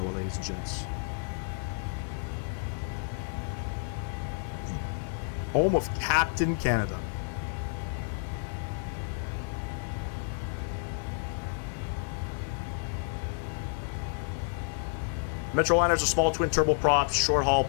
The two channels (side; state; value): right; silent; digital silence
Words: ladies and gents. Home of Captain Canada. Metroliner's a small twin turboprop short haul